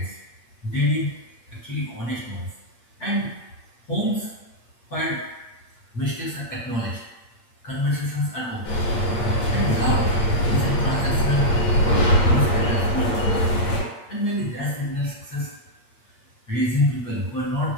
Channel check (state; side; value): late; right; 8.6 ms